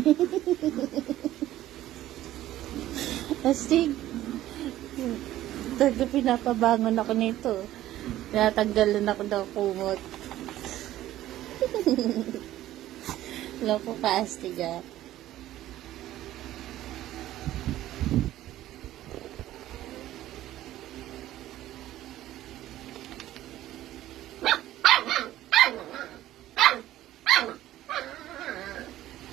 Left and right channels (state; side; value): quieter; left; 14.1 dB